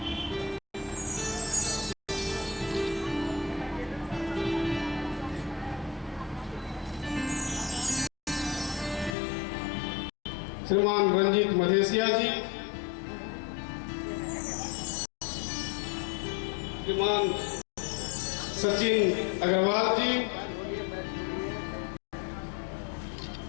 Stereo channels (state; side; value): drops out; right; at 9.2 s